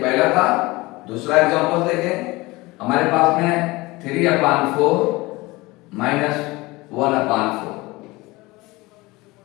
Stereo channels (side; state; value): right; quieter; 21.8 dB